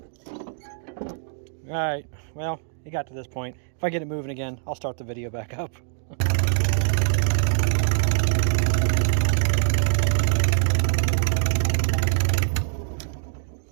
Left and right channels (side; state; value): left; silent; digital silence